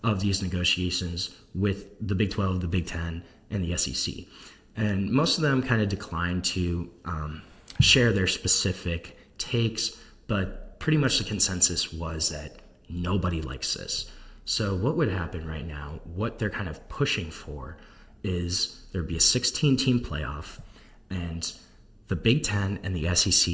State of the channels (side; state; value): both; identical; correlation 1.00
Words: of these negotiations with the Big 12, the Big 10, and the SEC. And most of them kind of declined to share their specific takes, but pretty much the consensus was that nobody likes this. So what would happen right now, what they're kind of pushing for, is there'd be a 16-team playoff, and the Big Ten and the